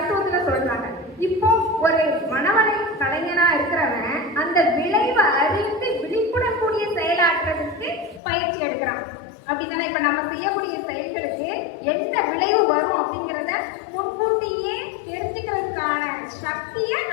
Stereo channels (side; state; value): right; drops out; at 8.2 s